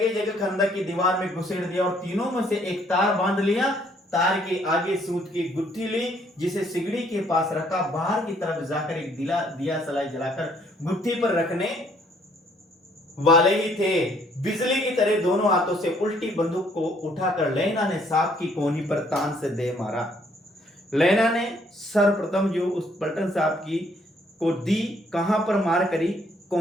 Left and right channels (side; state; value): both; normal; correlation 0.65